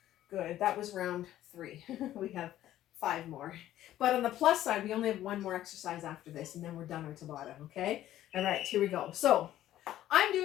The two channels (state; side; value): quieter; right; 13.1 dB